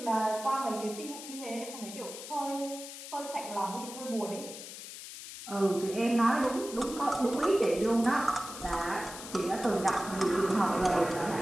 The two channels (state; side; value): noise; left; hiss, 11 dB below the sound